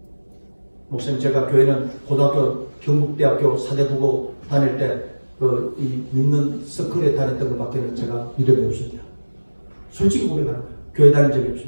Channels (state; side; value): inverted; both; correlation -1.00